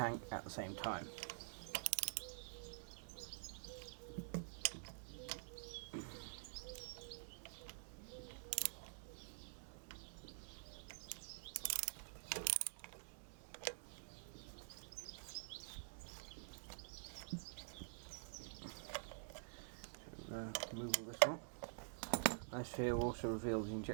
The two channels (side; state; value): left; silent; digital silence